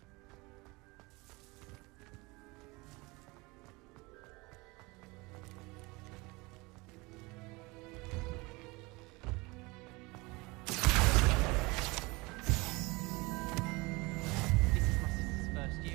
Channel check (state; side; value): quieter; left; 24.5 dB